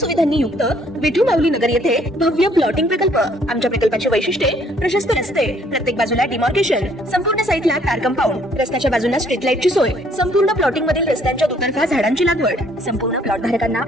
युक्त विठू माऊली नगर येथे भव्य प्लॉटिंग प्रकल्प। आमच्या प्रकल्पाची वैशिष्ट्ये प्रशस्त रस्ते, प्रत्येक बाजूला डिमार्केशन, संपूर्ण साईटला कार कंपाऊंड, रस्त्याच्या बाजूला स्ट्रीट लाईटची सोय, संपूर्ण प्लॉटिंग मधील रस्त्यांच्या दुतर्फा झाडांची लागवड, संपूर्ण प्लॉट धारकांना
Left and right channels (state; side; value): normal; both; correlation 0.63